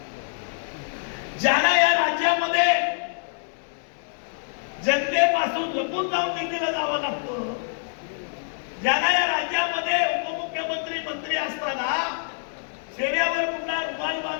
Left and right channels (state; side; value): silent; right; digital silence